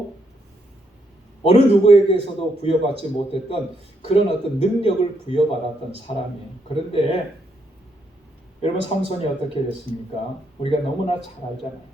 어느 누구에게서도 부여받지 못했던 그런 어떤 능력을 부여받았던 사람이에요. 그런데 여러분, 삼손이 어떻게 됐습니까? 우리가 너무나 잘 알잖아요.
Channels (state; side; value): normal; both; correlation 0.76